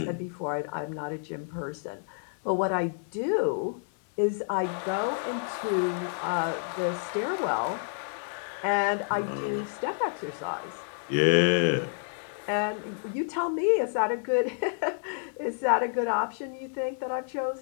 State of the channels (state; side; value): silent; right; 58 dB below the other